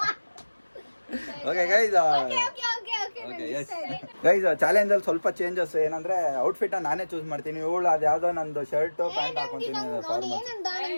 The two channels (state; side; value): inverted; both; correlation -1.00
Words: ಓಕೆ ಗೈಸ್, ಚಾಲೆಂಜ್ ಅಲ್ಲಿ ಸ್ವಲ್ಪ ಚೇಂಜಸ್ ಏನಂದ್ರೆ ಔಟ್ಫಿಟ್ ನಾನೇ ಚೂಸ್ ಮಾಡ್ತೀನಿ. ಇವಳು ಅದು ಯಾವ್ದೋ ನಂದು ಶರ್ಟ್ ಪ್ಯಾಂಟ್ ಹಾಕೊಂತೀನಿ.